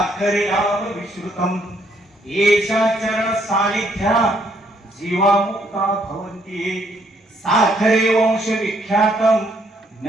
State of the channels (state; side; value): normal; both; correlation 0.69